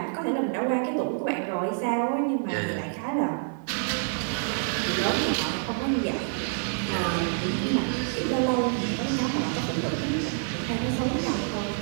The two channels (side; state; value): left; silent; 58 dB below the other